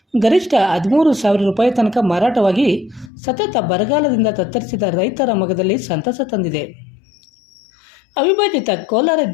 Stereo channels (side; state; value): right; drops out; at 3.1 s